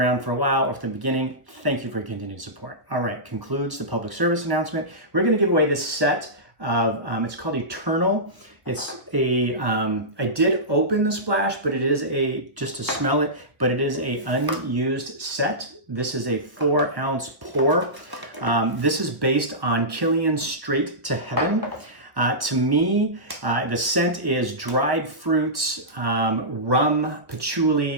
for a while or from the beginning, thank you for your continued support. All right, concludes the public service announcement. We're going to give away this set of, it's called Eternal. It's I did open the splash, but it is just to smell it, but it is a unused set. This is a 4-ounce pour. This is based on Killian's Straight to Heaven. To me, the scent is dried fruits, rum,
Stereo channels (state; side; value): late; left; 1.2 ms